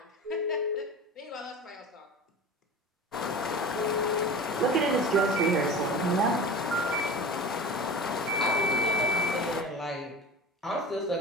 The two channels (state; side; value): normal; both; correlation 0.34